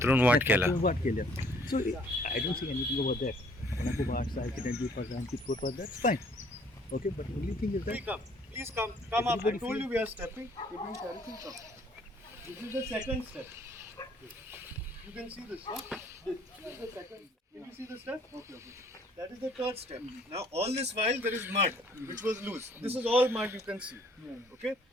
वाट केला. वाट केल्या. So I don't see anything over that. कोणाको वाट सारखी 20% that's fine. Okay, but the only thing is that Please come up. I told you we are stepping. This is the second step. You can see this, huh? This is the second. Can you see the step? Okay. That is the third step. Now, all this while there is mud, which was loose. This is all mud you can see. Okay.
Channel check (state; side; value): normal; both; correlation 0.60